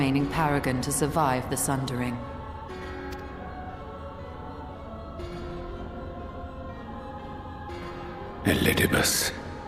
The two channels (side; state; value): both; identical; correlation 1.00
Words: paragon to survive the Sundering. Elidibus.